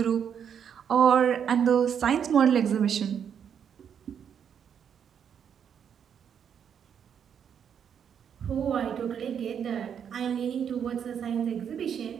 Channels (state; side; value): quieter; left; 8.0 dB